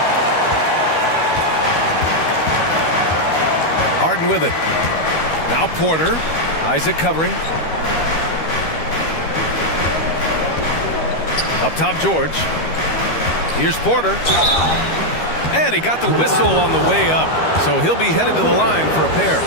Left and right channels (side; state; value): right; late; 13 ms